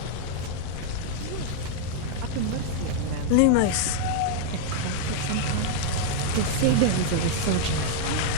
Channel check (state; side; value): different; both; correlation 0.00